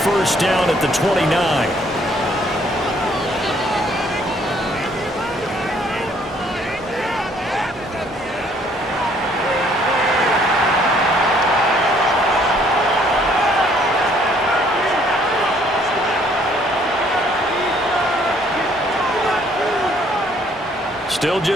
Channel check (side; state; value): both; normal; correlation 0.63